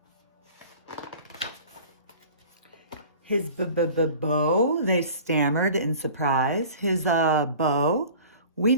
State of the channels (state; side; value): inverted; both; correlation -0.44